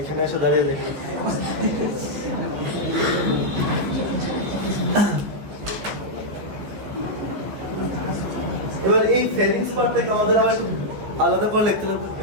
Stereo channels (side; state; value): left; late; 15 ms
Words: এসে দাঁড়িয়ে দেখতে। এবার এই ফেরিংস পার্টটাকে আমাদের আবার একটু আলাদা করে লিখতে লাগবে।